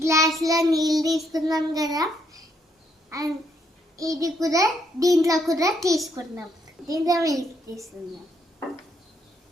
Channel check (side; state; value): both; normal; correlation 0.73